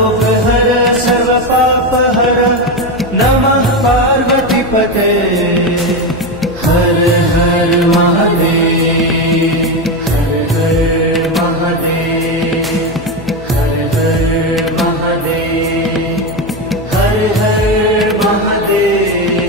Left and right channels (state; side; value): noise; left; hum, 16 dB below the sound